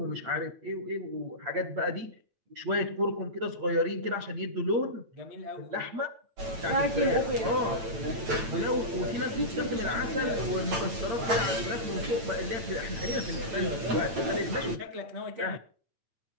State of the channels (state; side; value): late; left; 9.0 ms